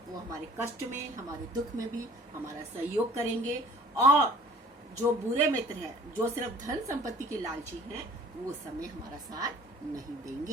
वो हमारे कष्ट में, हमारे दुख में भी हमारा सहयोग करेंगे, और जो बुरे मित्र हैं, जो सिर्फ धन संपत्ति के लालची हैं, वो समय हमारा साथ नहीं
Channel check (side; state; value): both; normal; correlation 0.51